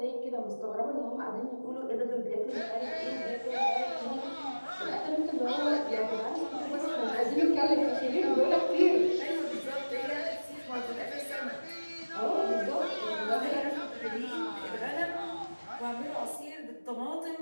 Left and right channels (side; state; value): both; inverted; correlation -1.00